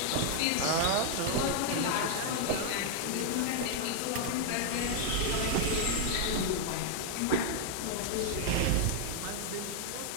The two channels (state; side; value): different; both; correlation 0.00